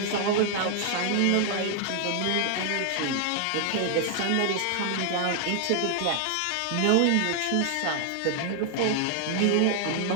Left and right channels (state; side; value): different; both; correlation 0.00